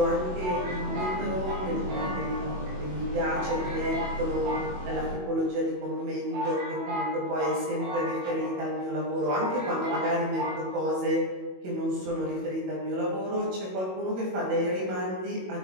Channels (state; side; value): late; left; 22 ms